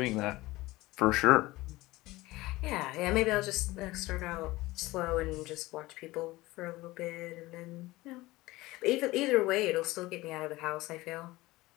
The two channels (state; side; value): quieter; right; 19.3 dB